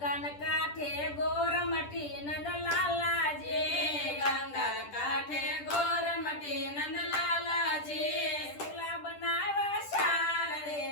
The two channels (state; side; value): late; right; 10 ms